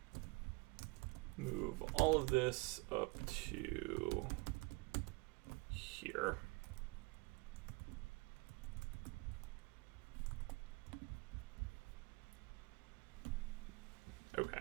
move all of this up to here. Okay,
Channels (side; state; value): left; quieter; 26.2 dB